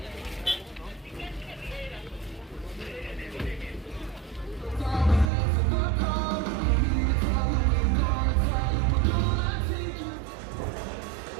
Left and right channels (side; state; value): left; drops out; at 5.3 s